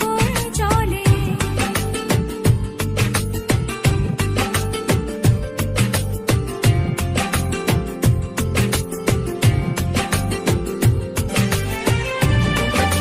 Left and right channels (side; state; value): both; identical; correlation 1.00